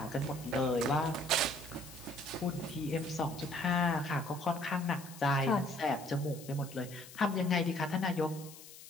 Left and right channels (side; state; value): left; noise; hiss, 17 dB below the sound